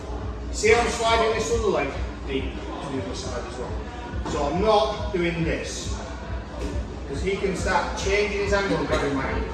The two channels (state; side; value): identical; both; correlation 1.00